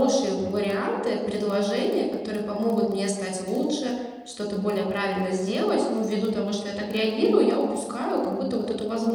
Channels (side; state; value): both; identical; correlation 1.00